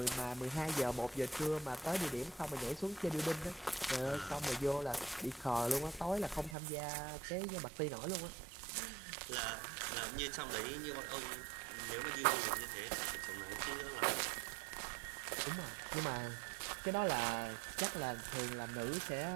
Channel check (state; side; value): drops out; left; at 6.6 s